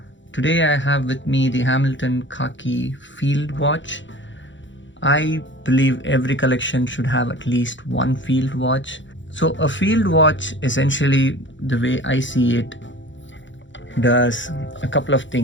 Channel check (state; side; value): late; right; 0.54 ms